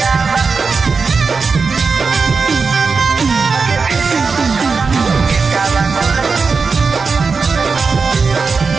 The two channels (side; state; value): left; quieter; 4.8 dB